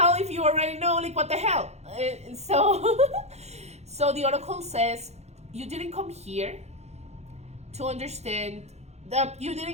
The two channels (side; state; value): left; late; 0.32 ms